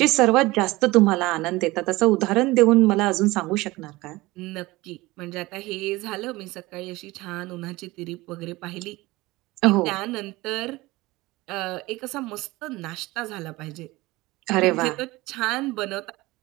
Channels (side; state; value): left; quieter; 20.5 dB